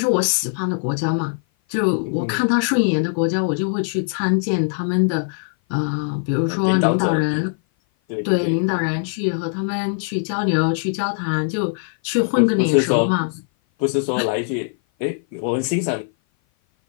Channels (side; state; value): right; silent; 56 dB below the other